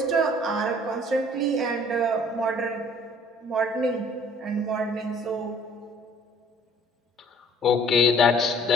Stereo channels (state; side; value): normal; both; correlation 0.55